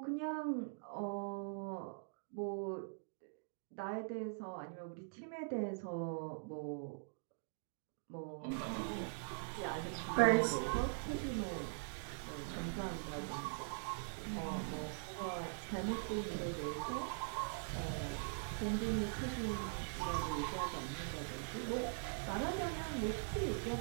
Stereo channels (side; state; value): left; silent; digital silence